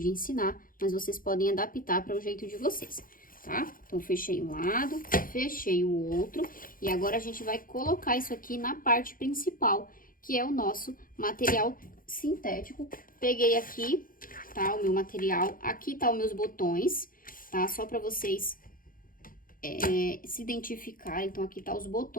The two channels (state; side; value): late; right; 0.41 ms